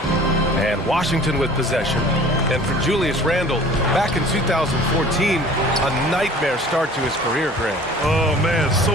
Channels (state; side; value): normal; both; correlation 0.47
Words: And Washington with possession. And for Julius Randle, back in 2014, a nightmare start to his career, Greg. Oh, man,